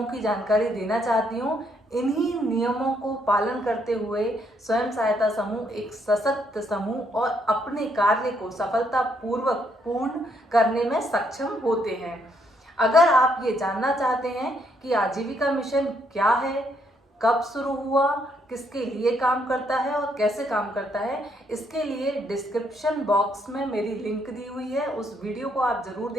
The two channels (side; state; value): both; normal; correlation 0.72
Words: की जानकारी देना चाहती हूँ। इन्हीं नियमों को पालन करते हुए स्वयं सहायता समूह एक सशक्त समूह और अपने कार्य को सफलतापूर्वक पूर्ण करने में सक्षम होते हैं। अगर आप ये जानना चाहते हैं कि आजीविका मिशन क्या है, कब शुरू हुआ, किसके लिए काम करता है और कैसे काम करता है, इसके लिए डिस्क्रिप्शन बॉक्स में मेरी लिंक दी हुई है। उस वीडियो को आप जरूर